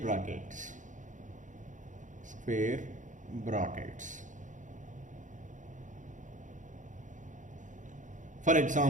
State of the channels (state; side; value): late; left; 0.37 ms